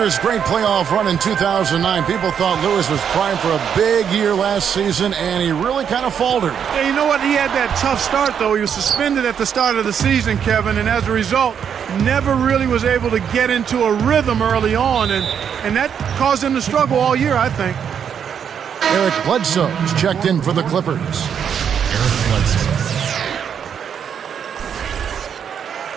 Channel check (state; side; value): quieter; left; 7.9 dB